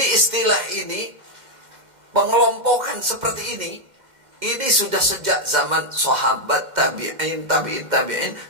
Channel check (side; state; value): left; late; 2.1 ms